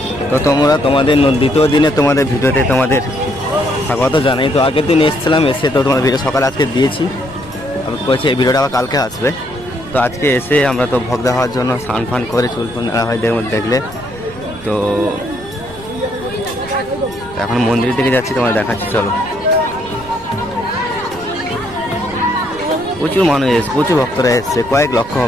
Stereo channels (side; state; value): right; noise; rumble, 19 dB below the sound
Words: তো তোমরা তোমাদের দ্বিতীয় দিনে তোমাদের ভিডিওতে তোমাদের স্বাগত জানাই। তো আগের দিন এসেছিলাম, এসে তো তোমার ভিডিও সকালে আজকে দিয়েছি, আমি বলছি এই ভিডিওটা আবার কালকে আসবে। তো আজকে এসে আমরা তো ভোগ দেওয়ার জন্য স্নান ফান করে চুল ফুল নেওয়া হয় দেখলে। তো এখন মন্দিরের দিকে যাচ্ছি, তোমার দেখাচ্ছি চলো। প্রচুর মানুষ এসছে, প্রচুর ভক্তরা এসছে, কয়েক লক্ষ